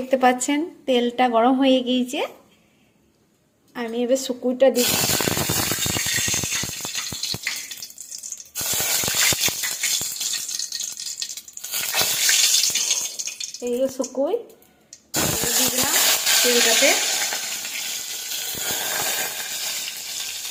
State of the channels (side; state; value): both; identical; correlation 1.00